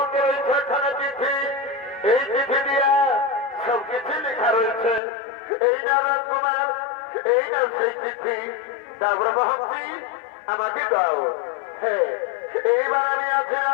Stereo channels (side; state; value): right; drops out; at 5.0 s